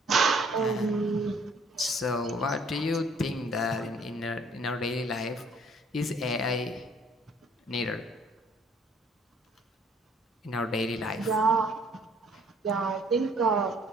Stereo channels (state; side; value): normal; both; correlation 0.60